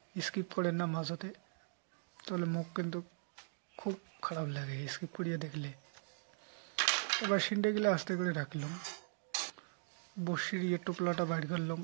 স্কিপ করেন না মাঝতে, তাহলে মুখ কিন্তু খুব খারাপ লাগে স্কিপ করিয়া দেখলে। এবার সিন্ডেগিলা আস্তে করে রাখলাম, বসির টোপলাটা বাইর করলাম,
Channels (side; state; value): left; silent; digital silence